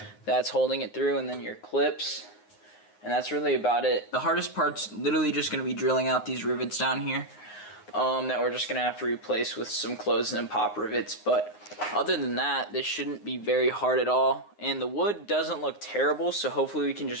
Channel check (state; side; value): late; right; 9.6 ms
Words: that's holding it through, and then your clips, and that's really about it. The hardest part's literally just going to be drilling out these rivets down here that we're just going to have to replace with some closed and pop rivets. But other than that, this shouldn't be very hard at all, and the wood doesn't look terrible, so hopefully we can